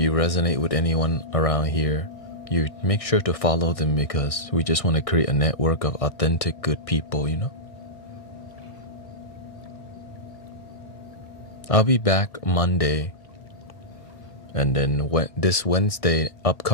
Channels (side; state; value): right; late; 1.6 ms